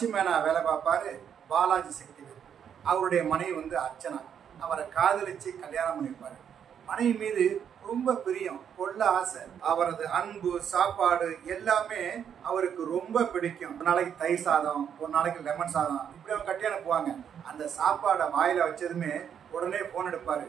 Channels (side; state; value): left; quieter; 8.3 dB